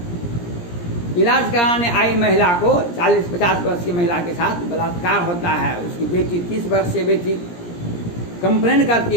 इलाज कराने आई महिला को 40-50 वर्ष की महिला के साथ बलात्कार होता है। उसकी बेटी 30 वर्षीय बेटी कंप्लेन करती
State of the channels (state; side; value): late; right; 17 ms